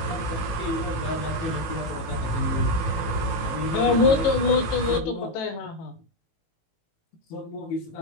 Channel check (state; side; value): late; right; 18 ms